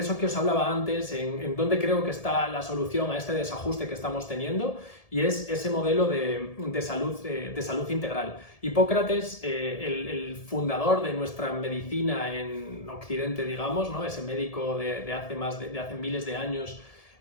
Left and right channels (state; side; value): late; right; 1.7 ms